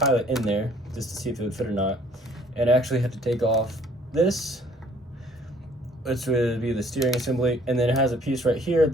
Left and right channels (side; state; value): both; normal; correlation 0.58